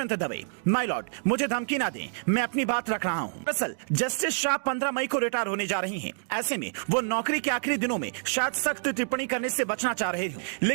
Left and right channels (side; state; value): left; silent; 60 dB below the other